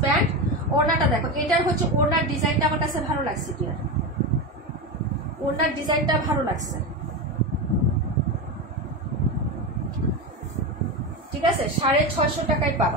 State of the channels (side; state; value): both; normal; correlation 0.17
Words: প্যান্ট। ওড়নাটা দেখো, এটার হচ্ছে ওড়নার ডিজাইনটা আমার কাছে ভালো লাগছে, ডিয়ার, ওড়নার ডিজাইনটা ভালো লাগছে, ঠিক আছে? 650 টাকায়